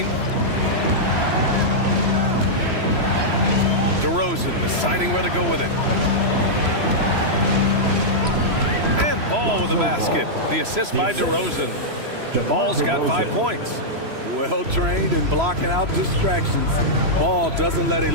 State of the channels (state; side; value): late; left; 3.0 ms